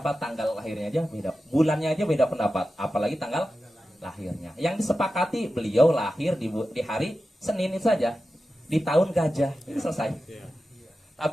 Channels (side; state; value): both; normal; correlation 0.92